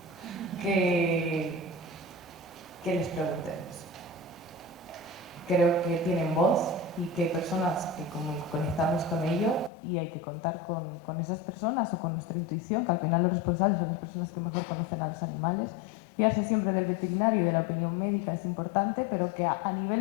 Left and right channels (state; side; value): drops out; right; at 9.7 s